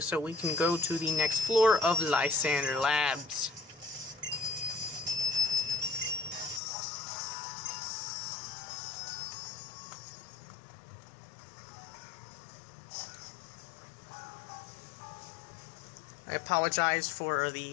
we can go to the next floor of Lysander Labs. I apologize for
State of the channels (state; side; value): drops out; right; at 6.6 s